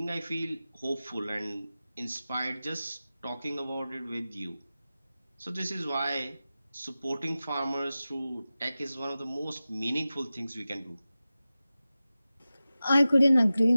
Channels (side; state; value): both; inverted; correlation -0.95